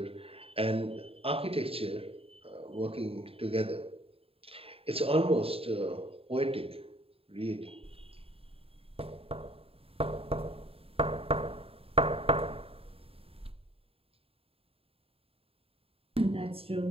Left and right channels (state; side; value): late; left; 0.27 ms